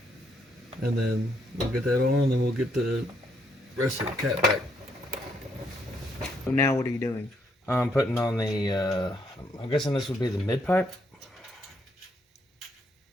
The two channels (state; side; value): normal; both; correlation 0.74